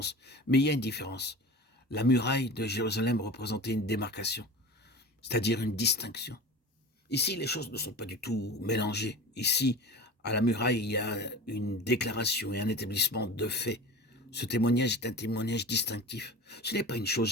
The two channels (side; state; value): both; normal; correlation 0.34